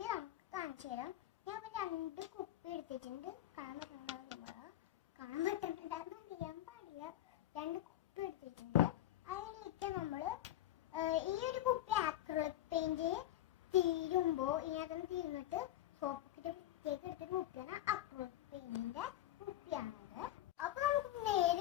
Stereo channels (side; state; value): right; quieter; 13.5 dB